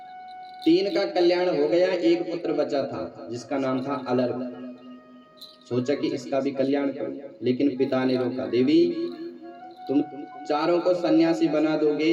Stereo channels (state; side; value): identical; both; correlation 1.00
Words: 3 का कल्याण हो गया, 1 पुत्र बचा था जिसका नाम था अलर्क। सोचा कि इसका भी कल्याण करूं, लेकिन पिता ने रोका। देवी, तुम चारों को सन्यासी बना